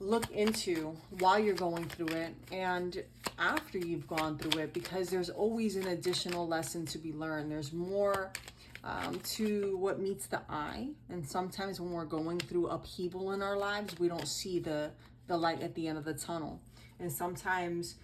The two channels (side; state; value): both; identical; correlation 1.00